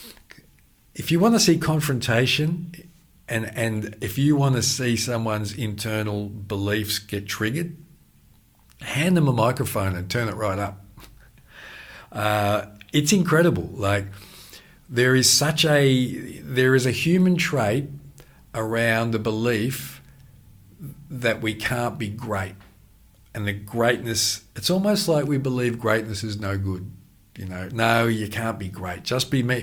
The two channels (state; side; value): identical; both; correlation 1.00